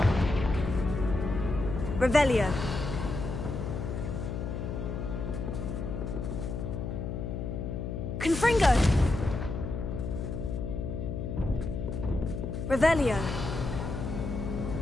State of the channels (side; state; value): left; noise; hum, 4 dB below the sound